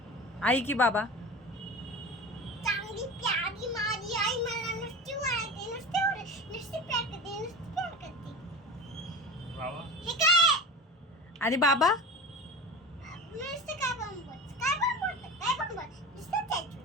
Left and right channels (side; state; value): both; normal; correlation 0.31